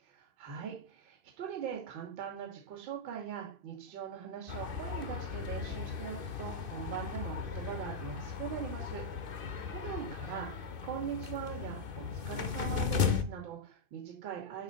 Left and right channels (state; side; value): late; left; 2.5 ms